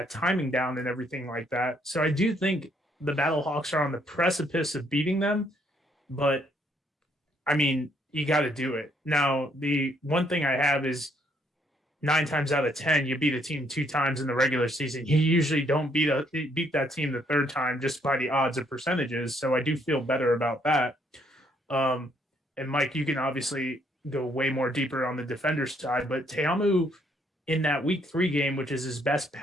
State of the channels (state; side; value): normal; both; correlation 0.69